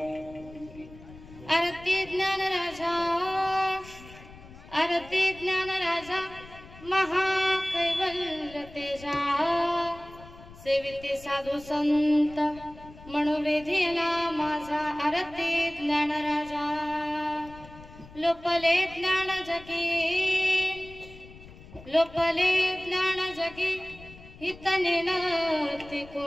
आरती ज्ञान राजा महाकैवल्य तेजा सेविते साधू संत मनोवेधीला माझा आरती ज्ञान राजा लोपले ज्ञान जगी हितने नती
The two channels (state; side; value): noise; left; rumble, 19 dB below the sound